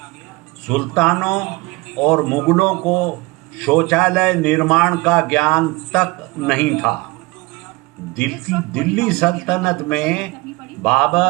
सुल्तानों और मुगलों को शौचालय निर्माण का ज्ञान तक नहीं था। दिल्ली सल्तनत में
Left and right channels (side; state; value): left; quieter; 23.6 dB